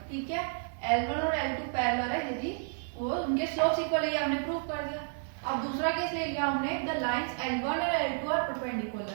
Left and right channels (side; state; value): left; silent; digital silence